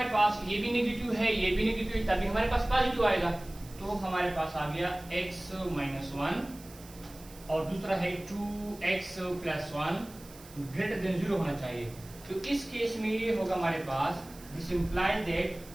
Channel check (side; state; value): right; noise; hiss, 20 dB below the sound